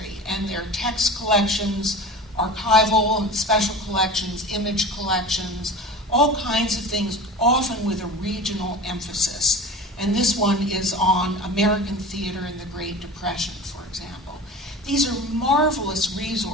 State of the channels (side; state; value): both; normal; correlation 0.34